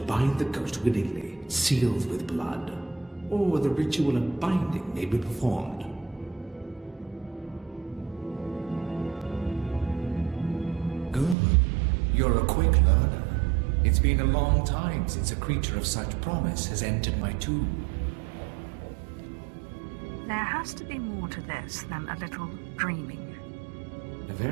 bind the ghost willingly, sealed with blood, or the ritual of binding may be performed. Good. You're a quick learner. It's been a long time since a creature of such promise has entered my tomb. There has to be more to this than a little dreaming. A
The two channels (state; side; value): drops out; left; at 11.4 s